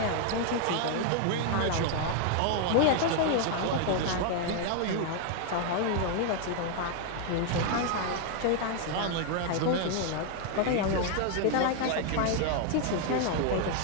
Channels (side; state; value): both; different; correlation 0.00